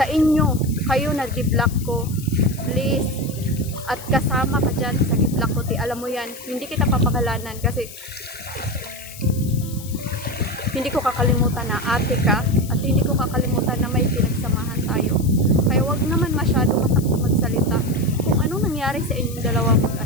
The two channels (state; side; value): noise; left; hiss, 15 dB below the sound